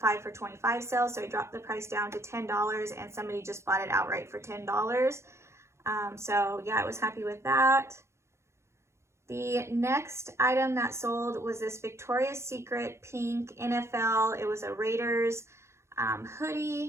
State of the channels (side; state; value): left; late; 0.13 ms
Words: for $25 sale, so I dropped the price down to $10, and somebody just bought it outright for $10. So yeah, I was happy with that. The next item that sold was this Victoria's Secret pink NFL. It was a Raiders